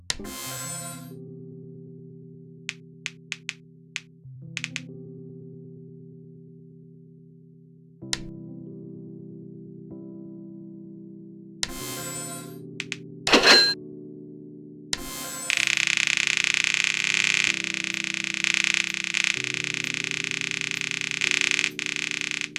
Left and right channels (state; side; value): identical; both; correlation 1.00